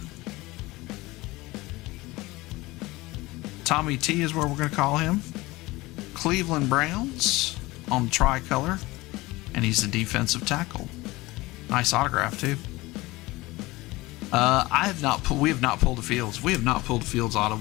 Tommy T is where we're going to call him. Cleveland Browns on the tricolor, and he's the defensive tackle. Nice autograph too. We have not pulled a Fields. We have not pulled a Fields auto.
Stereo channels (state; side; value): quieter; right; 20.5 dB